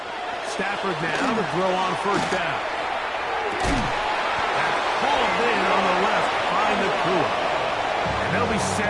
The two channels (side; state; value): both; identical; correlation 1.00